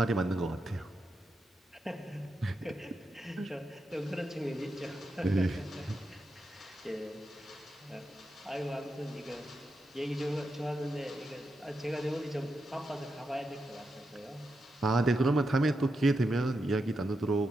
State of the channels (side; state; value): both; normal; correlation 0.86